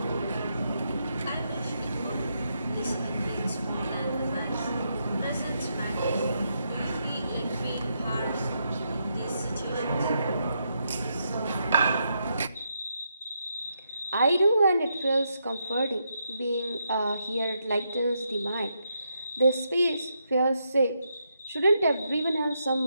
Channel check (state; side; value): inverted; both; correlation -0.81